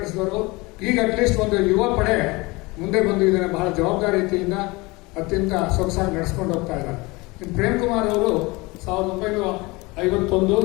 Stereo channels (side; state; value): right; quieter; 24.0 dB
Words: ಈಗ ಅಟ್ಲೀಸ್ಟ್ ಒಂದು ಯುವ ಪಡೆ ಮುಂದೆ ಬಂದು ಇದನ್ನು ಬಹಳ ಜವಾಬ್ದಾರಿಯಿಂದ ಅತ್ಯಂತ ಸೊಗಸಾಗಿ ನಡೆಸ್ಕೊಂಡು ಹೋಗ್ತಾ ಇದ್ದಾರೆ. ಪ್ರೇಮ್ ಕುಮಾರ್ ಅವರು